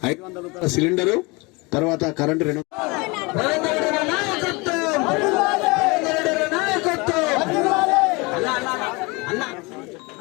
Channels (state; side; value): quieter; right; 26.3 dB